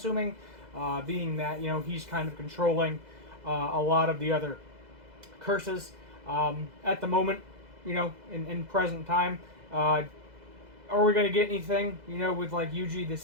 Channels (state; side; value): late; left; 2.0 ms